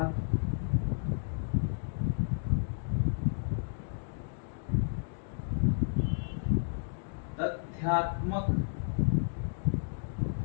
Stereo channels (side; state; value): right; silent; digital silence